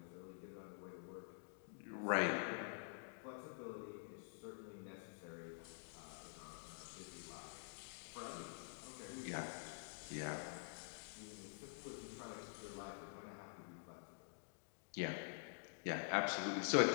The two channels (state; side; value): silent; right; digital silence